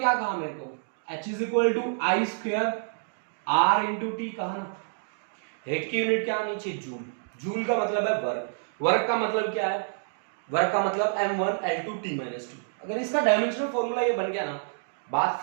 कहा मेरे को, H I²R×T कहा ना। हेट की यूनिट क्या होनी चाहिए, जूल। जूल का मतलब है वर्क, वर्क का मतलब क्या है, वर्क का मतलब m1L2T-2। अगर इसका डायमेंशनल फॉर्मूला ये बन गया ना, बात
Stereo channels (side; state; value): left; silent; digital silence